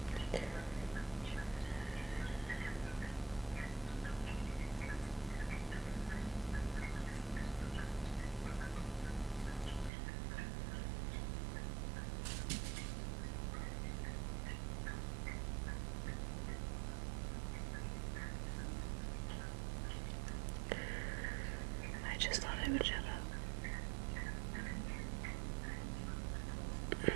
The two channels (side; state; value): left; drops out; at 9.9 s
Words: I just thought I would shut up.